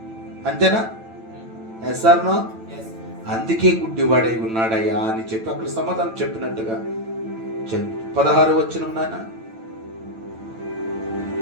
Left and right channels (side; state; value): left; late; 9.0 ms